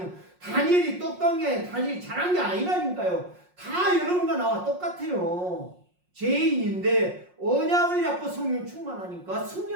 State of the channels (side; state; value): left; late; 5.5 ms